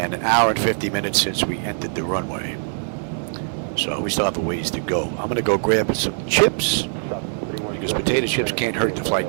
an hour and 50 minutes since we entered the runway. So we still have a ways to go. I'm going to go grab some chips, because potato chips can't hurt the flight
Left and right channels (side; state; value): left; silent; 64 dB below the other